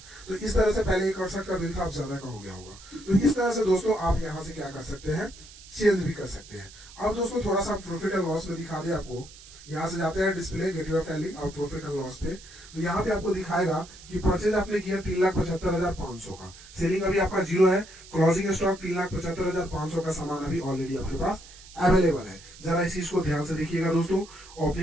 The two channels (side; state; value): right; noise; hiss, 19 dB below the sound